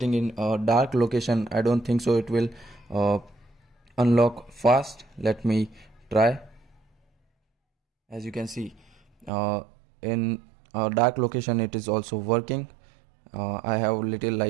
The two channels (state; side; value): drops out; left; at 9.3 s